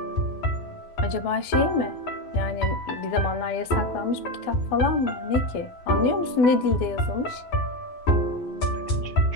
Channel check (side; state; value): right; late; 12 ms